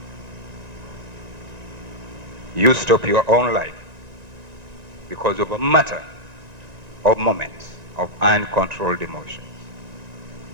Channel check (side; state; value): left; late; 1.9 ms